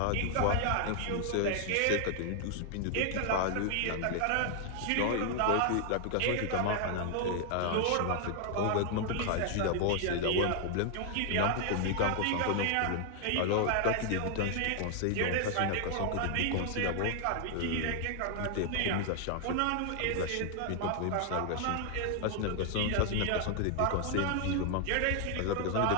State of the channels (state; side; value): different; both; correlation 0.00